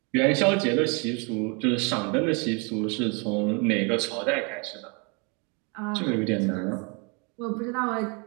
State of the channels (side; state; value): left; quieter; 32.9 dB